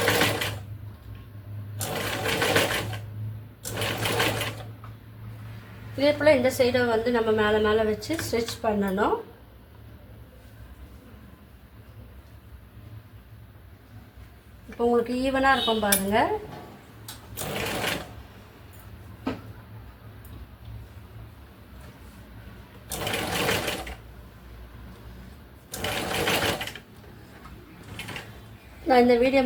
இதே போல் இந்த சைடை வந்து நம்ம மேலே மேலே வச்சு ஸ்டிச் பண்ணணும். இப்போ உங்களுக்கு ஈவனாக இருக்கும் பாருங்கள். நான் இந்த வீடியோ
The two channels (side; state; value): both; identical; correlation 1.00